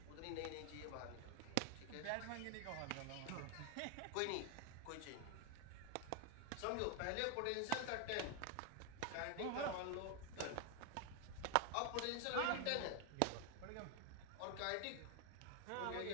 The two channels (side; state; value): both; different; correlation 0.00